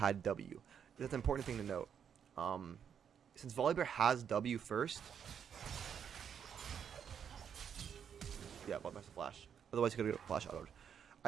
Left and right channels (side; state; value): left; quieter; 7.9 dB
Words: W. That's an important thing to note. Since Volibear has W first... Yeah, well, that's a flash. Otherwise, he could get flash autoed.